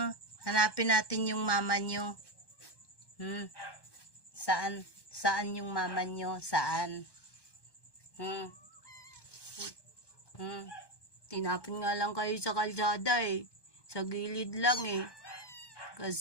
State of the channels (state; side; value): late; right; 1.1 ms